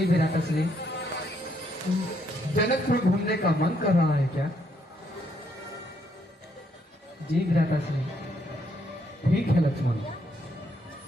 विराट असली जनकपुर घूमने का मन कर रहा है क्या? जी विराट असली। ठीक है लक्ष्मण,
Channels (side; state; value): both; normal; correlation 0.73